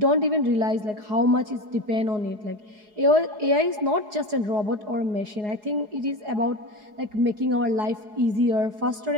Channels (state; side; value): late; left; 4.8 ms